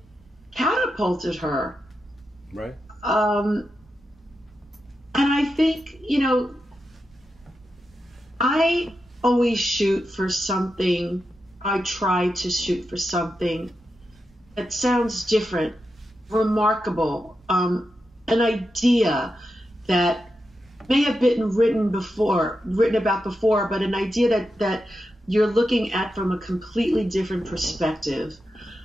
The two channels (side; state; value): both; normal; correlation 0.88